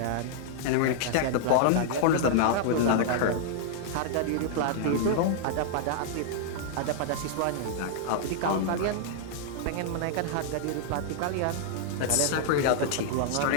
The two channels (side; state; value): both; different; correlation -0.01